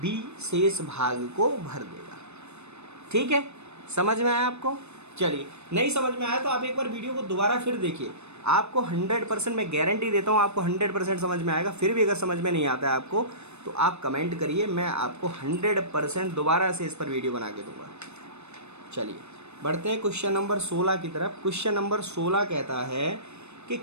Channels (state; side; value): late; left; 0.81 ms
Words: शेष भाग को भर देगा, ठीक है। समझ में आया आपको? चलिए, नहीं समझ में आया तो आप एक बार वीडियो को दोबारा फिर देखिए, आपको 100% मैं गारंटी देता हूँ आपको 100% समझ में आएगा। फिर भी अगर समझ में नहीं आता है आपको तो आप कमेंट करिए, मैं आपको 100% दोबारा से इस पर वीडियो बना के दूंगा। चलिए बढ़ते हैं क्वेश्चन नंबर 16 की तरफ। क्वेश्चन नंबर 16 कहता है कि